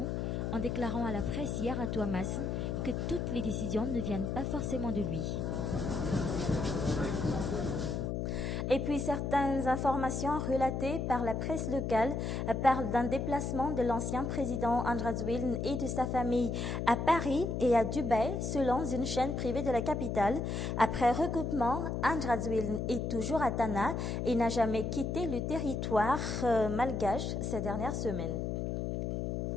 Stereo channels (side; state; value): left; noise; hum, 1 dB below the sound